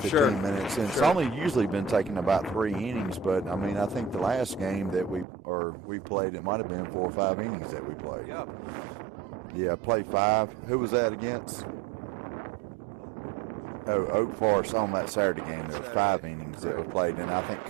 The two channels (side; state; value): left; drops out; at 5.2 s